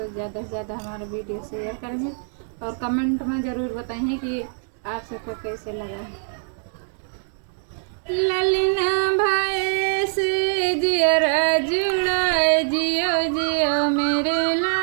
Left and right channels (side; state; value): left; silent; digital silence